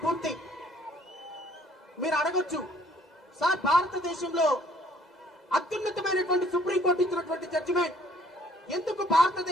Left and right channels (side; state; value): both; normal; correlation 0.60